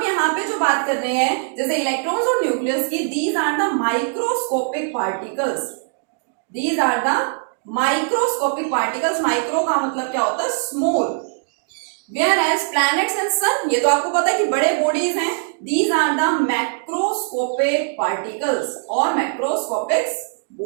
यहाँ पे जो बात कर रहे हैं जैसे इलेक्ट्रॉन्स और न्यूक्लियस की, these are the microscopic particles. Micro का मतलब क्या होता है? Small. Whereas planets and sun, ये तो आपको पता है कि बड़े बॉडीज हैं. These are the macroscopic particles और मैक्रोस्कोपिक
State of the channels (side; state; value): left; silent; 62 dB below the other